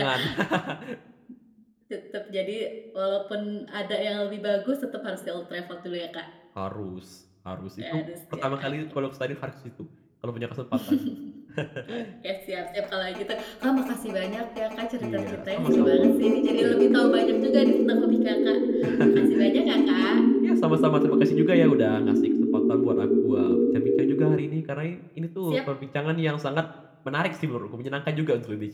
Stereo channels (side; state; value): both; identical; correlation 1.00